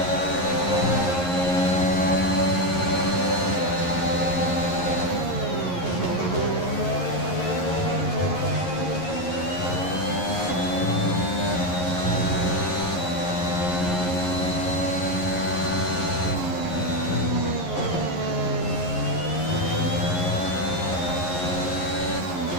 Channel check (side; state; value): right; late; 11 ms